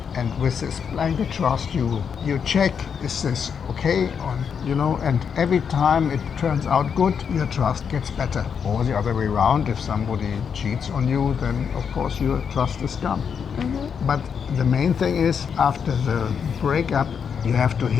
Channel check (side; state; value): right; quieter; 6.9 dB